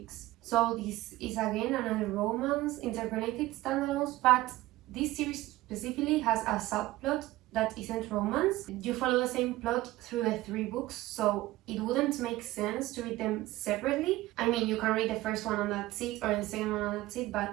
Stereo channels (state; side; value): quieter; left; 17.4 dB